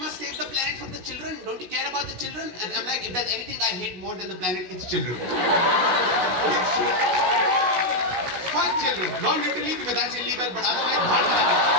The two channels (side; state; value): left; late; 16 ms